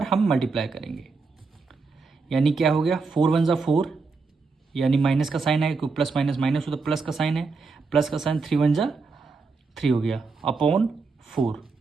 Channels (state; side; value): quieter; left; 4.4 dB